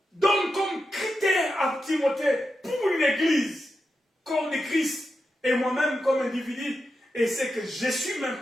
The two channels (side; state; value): both; normal; correlation 0.89